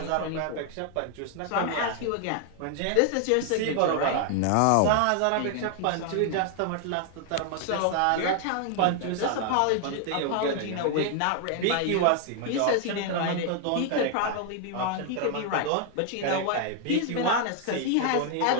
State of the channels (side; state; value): both; different; correlation 0.00